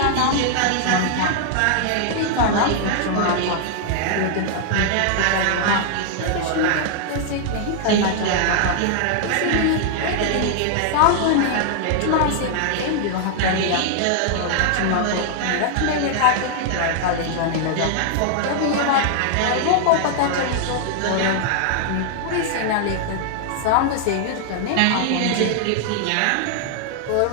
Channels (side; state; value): both; different; correlation -0.01